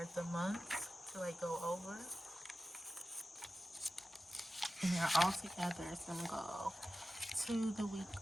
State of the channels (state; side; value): normal; both; correlation 0.94